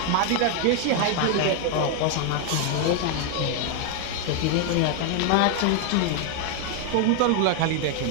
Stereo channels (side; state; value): both; different; correlation 0.00